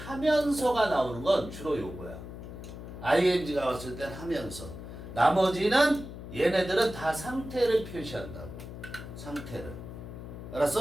나오는 건 주로 요거야. ing가 왔을 땐 하면서. 나머지는 얘네들은 다 상태를 표시한다고. 상태를.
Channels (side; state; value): left; noise; hum, 11 dB below the sound